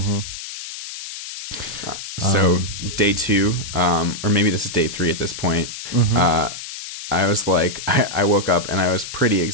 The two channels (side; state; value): left; noise; hiss, 10 dB below the sound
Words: So day 2, or maybe this is day 3 at this point, mm-hmm. I was like, I woke up and I was pretty